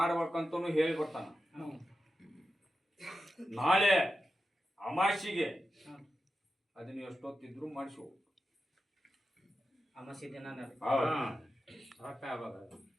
ಹೇಳಿ ಬರ್ತಾನ. ನಾಳೆ ಅಮಾಸಿಗೆ ಅದನ್ನ ಎಷ್ಟೊತ್ತಿದ್ರು ಮಾಡಿಸು. ಅಮಾಸಿ ದಿನ ಹೊತ್ತ ಆವಾಗ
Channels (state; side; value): normal; both; correlation 0.91